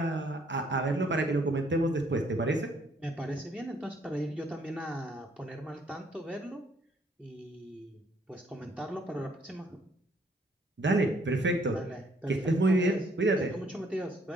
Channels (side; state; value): both; normal; correlation 0.66